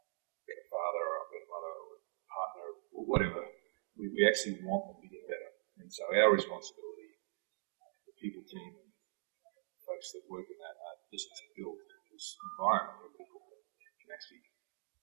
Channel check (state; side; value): silent; left; digital silence